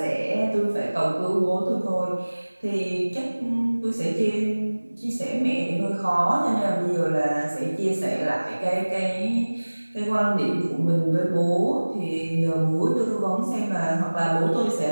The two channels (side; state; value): both; inverted; correlation -1.00